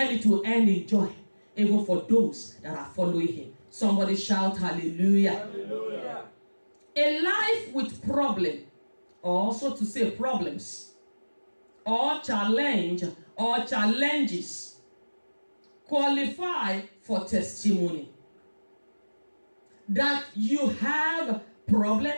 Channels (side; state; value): both; inverted; correlation -1.00